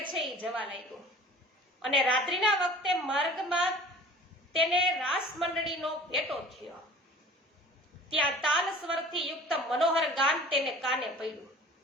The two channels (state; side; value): normal; both; correlation 0.45